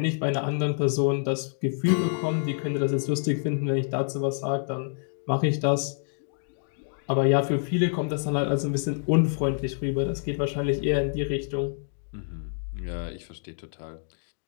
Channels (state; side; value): silent; right; digital silence